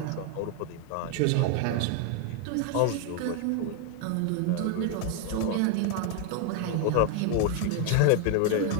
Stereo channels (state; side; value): different; both; correlation 0.01